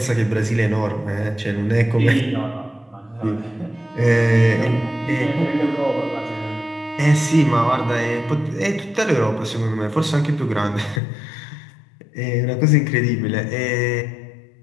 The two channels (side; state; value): right; drops out; at 11.0 s